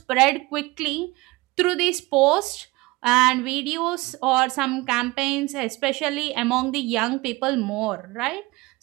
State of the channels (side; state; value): left; quieter; 21.9 dB